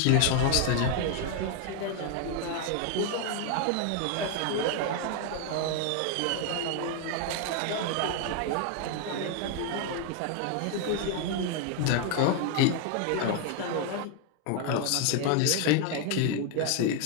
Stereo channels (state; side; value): different; both; correlation 0.00